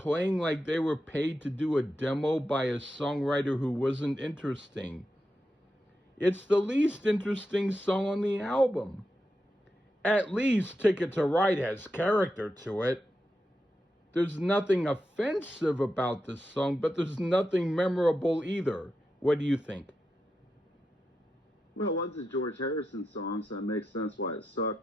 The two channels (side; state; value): both; normal; correlation 0.88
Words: like they were paid to do a demo by a songwriter who wasn't interesting. It's the least interesting song on the album. At least Ticket to Ride has character to it. There's nothing offensive about this song, but there's nothing memorable either. What do you think? Well, it was a George Harrison song, so it makes sense why it